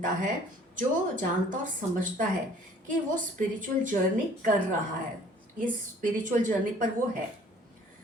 है जो जानता और समझता है कि वो स्पिरिचुअल जर्नी कर रहा है, इस स्पिरिचुअल जर्नी पर वो है,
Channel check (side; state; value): both; normal; correlation 0.54